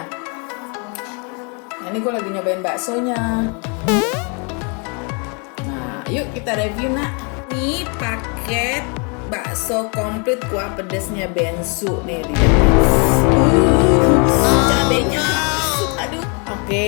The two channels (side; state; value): right; quieter; 35.4 dB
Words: Nah, ini gue lagi nyobain baksonya. Nah, yuk kita review nak. Ini paket bakso komplit kuah pedesnya bensu nih. Cabenya masuk, aduh.